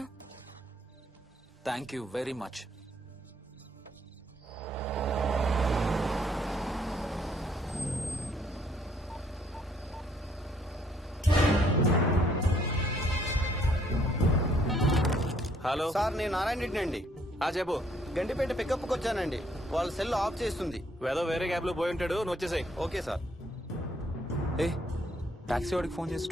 Thank you very much. Hello sir నేను నారాయణ రెడ్డి అండి. చెప్పు. గండిపేట పికప్కి వచ్చానండి. వాళ్ళ సెల్ ఆఫ్ చేస్తుంది. వేదో వేరే క్యాబ్ లో పోయి ఉంటాడు, నువ్వు వచ్చేసాయి. Okay sir. ఏ టాక్సీ వాడికి ఫోన్ చేసి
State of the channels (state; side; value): normal; both; correlation 0.66